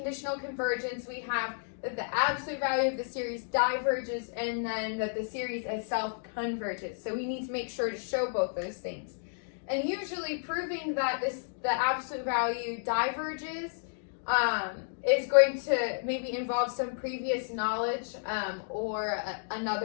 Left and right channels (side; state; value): right; silent; digital silence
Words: convergence, we have that the absolute value of the series diverges and then that the series itself converges. So we need to make sure to show both those things. And usually proving that the absolute value diverges is going to maybe involve some previous knowledge or